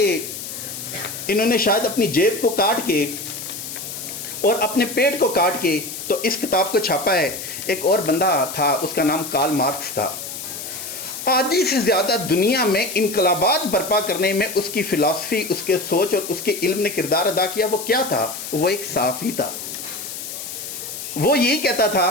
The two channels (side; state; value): left; noise; hiss, 8 dB below the sound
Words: انہوں نے شاید اپنی جیب کو کاٹ کے اور اپنے پیٹ کو کاٹ کے تو اس کتاب کو چھاپا ہے۔ ایک اور بندہ تھا، اس کا نام کارل مارکس تھا۔ آدھی سے زیادہ دنیا میں انقلابات برپا کرنے میں اس کی فلسفی، اس کے سوچ اور اس کے علم نے کردار ادا کیا. وہ کیا تھا؟ وہ ایک صحافی تھا. وہ یہی کہتا